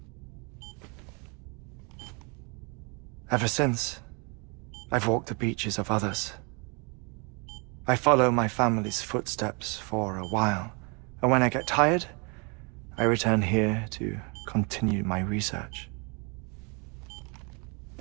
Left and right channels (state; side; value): quieter; left; 32.4 dB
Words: Ever since, I've walked the beaches of others, I follow my family's footsteps for a while, and when I get tired, I return here to continue my research.